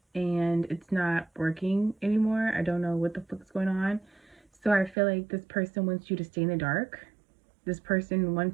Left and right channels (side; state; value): left; drops out; at 5.0 s